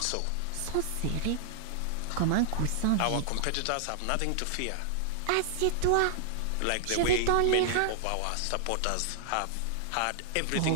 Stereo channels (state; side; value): different; both; correlation -0.01